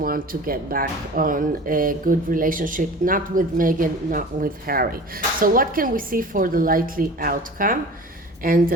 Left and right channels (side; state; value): both; normal; correlation 0.40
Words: to get back on a good relationship, not with Meghan, not with Harry. So what can we see for the likely outcome? And